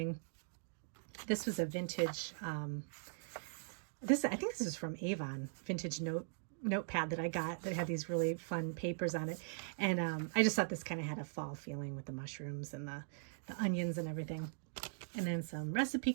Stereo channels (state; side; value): silent; left; digital silence